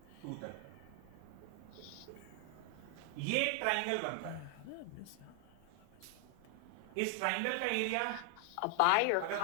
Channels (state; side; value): different; both; correlation 0.00